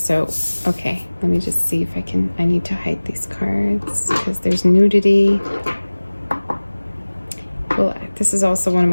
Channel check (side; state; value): both; inverted; correlation -1.00